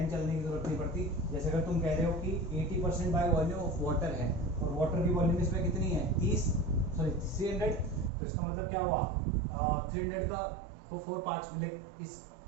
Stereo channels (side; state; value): left; drops out; at 8.1 s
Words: चलने की जरूरत नहीं पड़ती। जैसे अगर तुम कह रहे हो कि 80% बाय वॉल्यूम ऑफ वाटर है, और वाटर की वॉल्यूम इसमें कितनी है 300, तो इसका मतलब क्या हुआ 300 का को 4 पार्ट्स मिले। इस